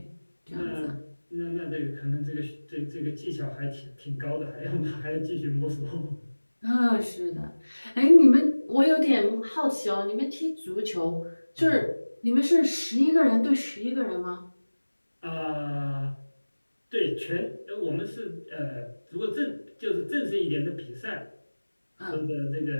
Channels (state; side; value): inverted; both; correlation -1.00